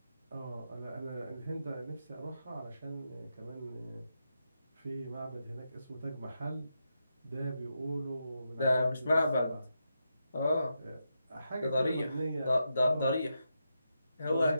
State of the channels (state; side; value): inverted; both; correlation -0.86